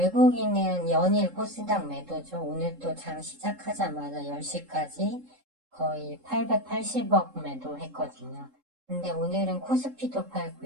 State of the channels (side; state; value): left; late; 3.7 ms